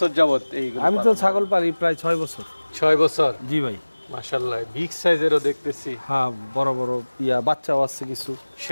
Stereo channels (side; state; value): both; inverted; correlation -1.00